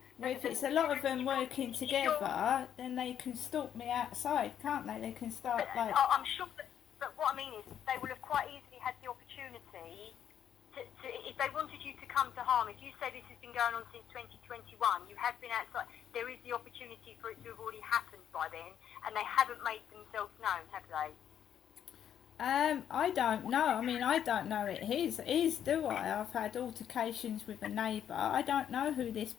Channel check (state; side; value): quieter; right; 9.5 dB